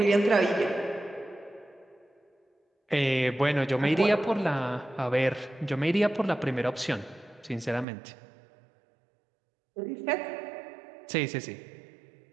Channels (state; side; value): drops out; left; at 7.9 s